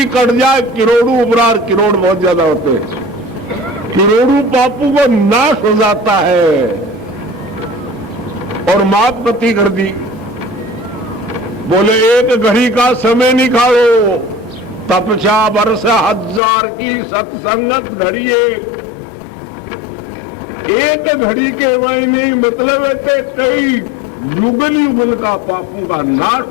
कट जाए करोड़ों उपरार। करोड़ बहुत ज्यादा होते हैं, करोड़ों पापों को नाश हो जाता है। और माप गति कर दी। बोले एक घड़ी का समय निकालो, तपस्या वर्ष हजार की सत्संगत घड़ी एक घड़ी के मायने मतलब है कि कई युगल युगल का पापों का नाश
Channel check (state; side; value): drops out; right; at 16.4 s